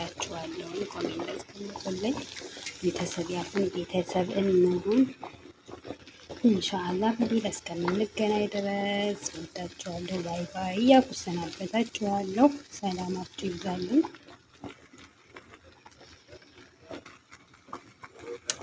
ኮሜንት አስቀምጡልኝ። ቤተሰብ ያሁን ቤተሰብ እንሁን። ኢንሻአላህ በሌላ እስከምንገናኝ ድረስ ወዳችኋለሁ። ባይ ባይ እያልኩ ሰናበታችኋለሁ። ሰላማችሁ ይብዛልኝ።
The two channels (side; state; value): both; identical; correlation 1.00